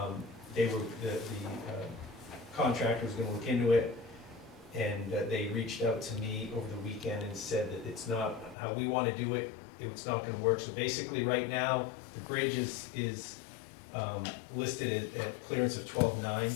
The contractor was gonna look into it, and they reached out to me over the weekend and said that it's not how we wanna do it, it's not gonna work. So basically, right now, the bridge is listed at clearance of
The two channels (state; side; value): drops out; right; at 8.6 s